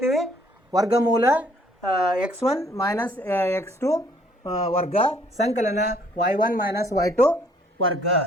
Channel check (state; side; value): normal; both; correlation 0.62